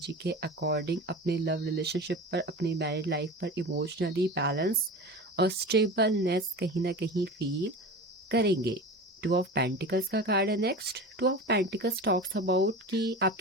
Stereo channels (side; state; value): both; normal; correlation 0.31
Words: के अकॉर्डिंग अपने लव रिलेशनशिप पर, अपनी मैरिड लाइफ पर इमोशनली बैलेंस और स्टेबलनेस कहीं ना कहीं फील करेंगे। 2 ऑफ पेंटिकल्स का कार्ड है next. 2 of pentacles talks about कि